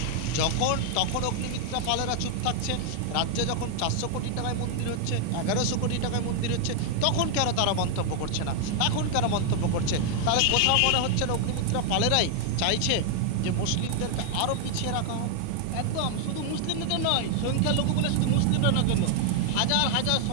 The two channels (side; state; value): both; different; correlation 0.00